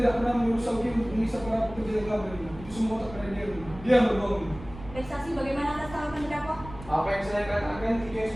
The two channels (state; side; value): noise; right; rumble, 15 dB below the sound